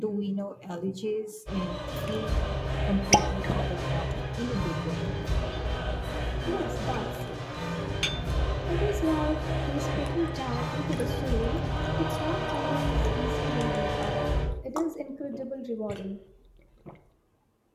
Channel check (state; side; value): identical; both; correlation 1.00